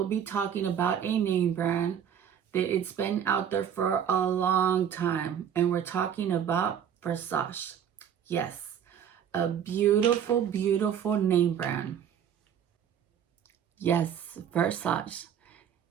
be talking about a name brand that it's been out there for a long time. And we're talking about Versace. Yes, a beautiful, beautiful name brand. Yes, Versace.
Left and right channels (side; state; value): left; quieter; 8.7 dB